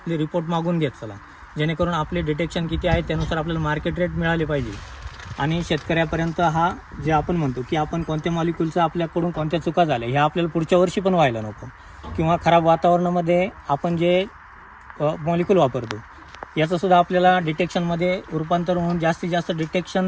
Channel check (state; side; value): identical; both; correlation 1.00